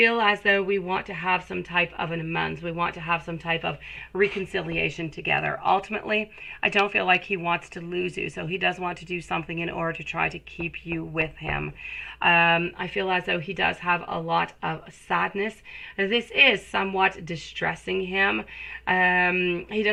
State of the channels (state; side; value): identical; both; correlation 1.00